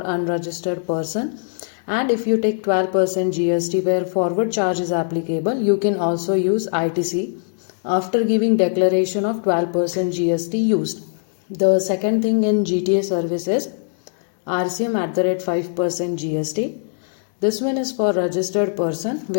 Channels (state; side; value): silent; right; 65 dB below the other